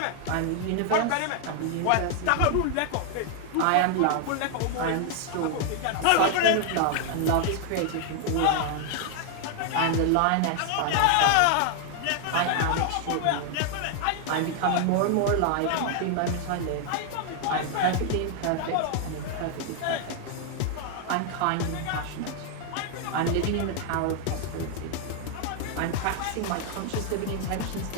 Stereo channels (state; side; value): different; both; correlation 0.00